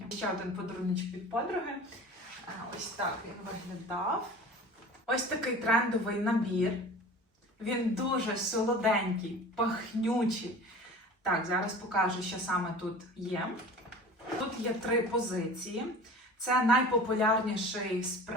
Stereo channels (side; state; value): both; normal; correlation 0.39